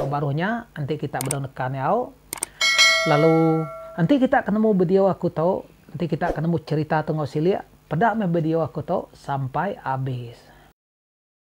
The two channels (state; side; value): identical; both; correlation 1.00